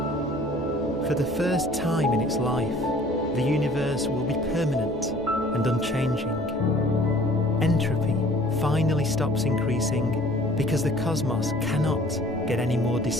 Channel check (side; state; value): both; normal; correlation 0.52